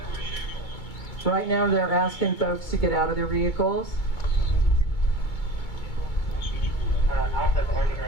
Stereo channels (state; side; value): late; right; 2.2 ms